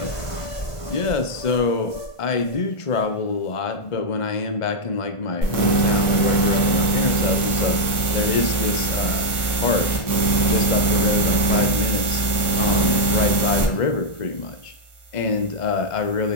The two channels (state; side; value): late; right; 1.5 ms